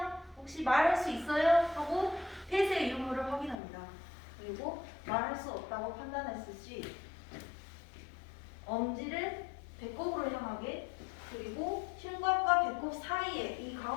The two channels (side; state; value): right; drops out; at 3.6 s